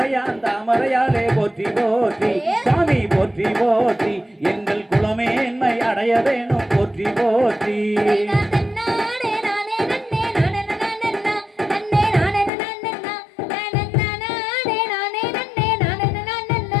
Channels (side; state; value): right; drops out; at 12.5 s